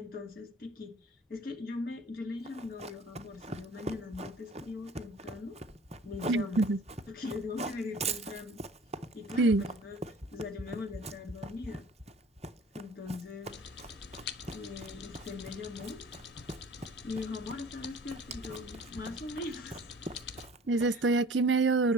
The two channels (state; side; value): normal; both; correlation 0.47